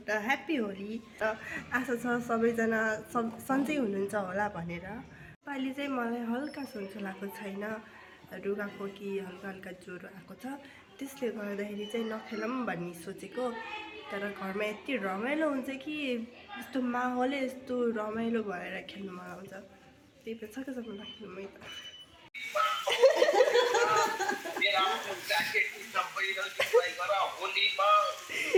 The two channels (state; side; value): identical; both; correlation 1.00